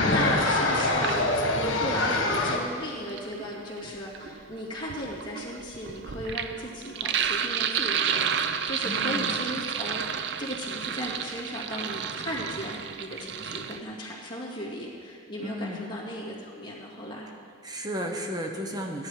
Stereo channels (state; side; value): normal; both; correlation 0.11